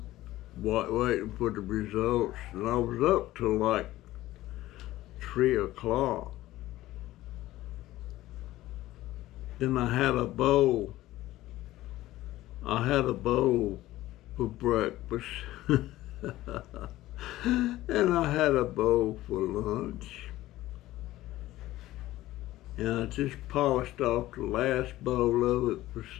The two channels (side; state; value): right; quieter; 16.0 dB